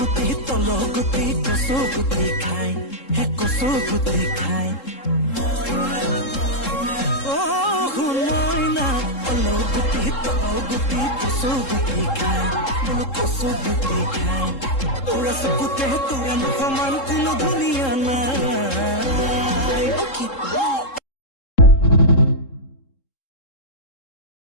তল গুটি কচু গুটি খাই হে কচু গুটি খাই ও মইনা তল গুটি কচু গুটি খাই বোলো কচু গুটি খাই তোরা চকুতে তোৰা সমান কোনো ধুনীয়া নাই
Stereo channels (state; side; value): late; right; 3.7 ms